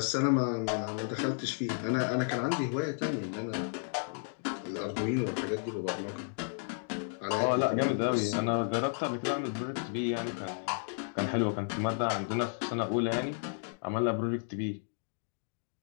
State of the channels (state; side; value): silent; right; digital silence